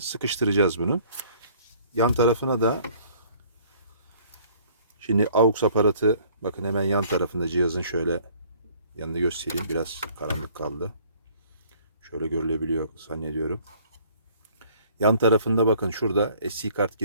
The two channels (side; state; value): both; inverted; correlation -0.56